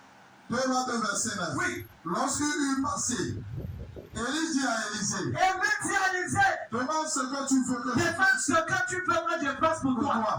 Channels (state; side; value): identical; both; correlation 1.00